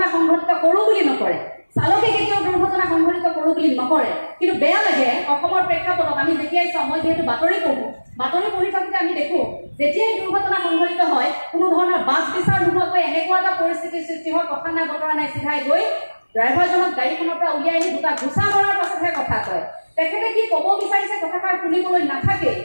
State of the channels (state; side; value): inverted; both; correlation -1.00